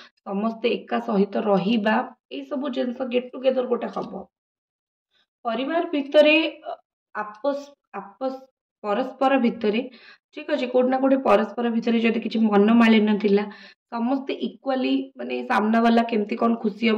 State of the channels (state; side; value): identical; both; correlation 1.00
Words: समस्ते एका सहित रहिबा, ये सब जिनस गेट टुगेदर गोटे हम। परिवार भितर आपस आपस परस्पर भितर ठीक अच्छे, कोटना कोटे परस्पर भितर जदि किसी मनमालिन्य थिला, समस्ते इक्वाली माने सामना वाला केमती कौन खुशी